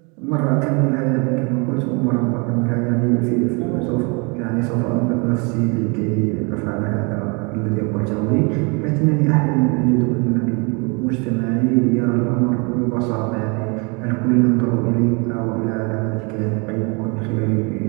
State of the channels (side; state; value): left; quieter; 31.5 dB